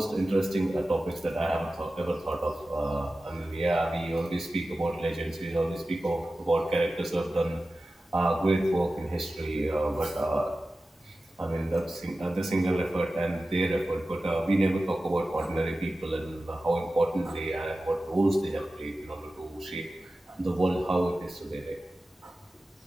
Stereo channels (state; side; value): normal; both; correlation 0.95